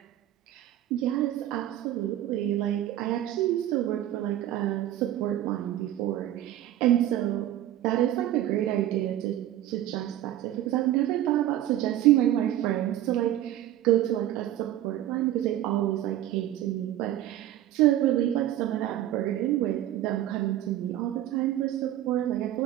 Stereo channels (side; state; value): left; quieter; 12.9 dB